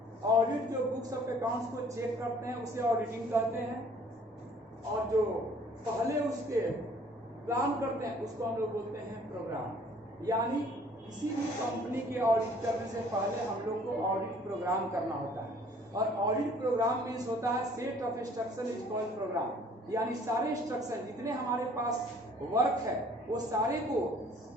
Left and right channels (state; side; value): normal; both; correlation 0.56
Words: ऑडिट जो बुक्स ऑफ अकाउंट्स को चेक करते हैं उसे ऑडिटिंग कहते हैं, और जो पहले उसके प्लान करते हैं उसको हम लोग बोलते हैं प्रोग्राम। यानी किसी भी कंपनी के ऑडिट करने से पहले हम लोग को ऑडिट प्रोग्राम करना होता है, और ऑडिट प्रोग्राम मीन्स होता है set of instruction is called programme. यानी सारे इंस्ट्रक्शन जितने हमारे पास वर्क है वो सारे को